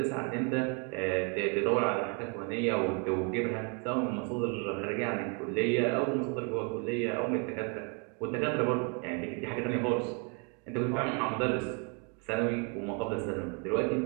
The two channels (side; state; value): left; quieter; 35.4 dB